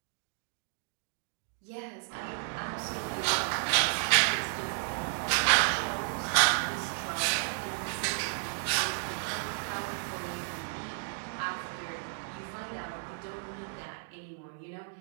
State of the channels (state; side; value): silent; left; digital silence